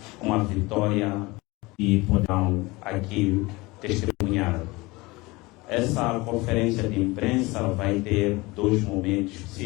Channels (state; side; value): quieter; right; 22.7 dB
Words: uma vitória que poderão aqui testemunhar. Essa conferência de imprensa vai ter dois momentos